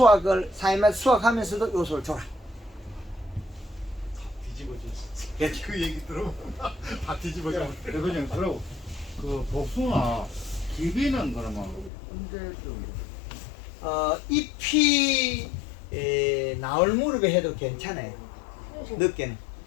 사이마다 수확하면서도 요소를 줘라. 뒤집어졌어. 그 얘기 들으면 다 뒤집어져. 그냥 그러고 그 복숭아 기비는 그러면 언제쯤? 잎이 나올 무렵에 해도 괜찮아요. 늦게는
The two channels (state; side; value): drops out; right; at 11.9 s